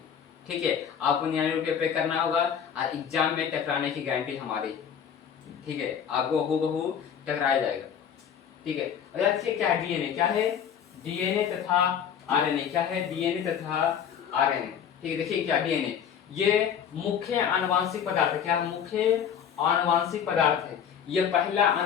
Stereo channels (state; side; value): quieter; right; 8.2 dB